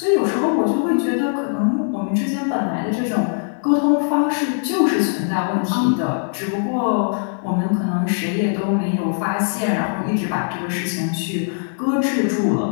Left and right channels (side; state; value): right; silent; 65 dB below the other